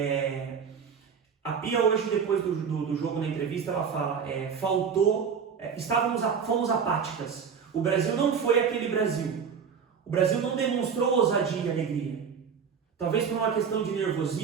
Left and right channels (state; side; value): quieter; left; 6.7 dB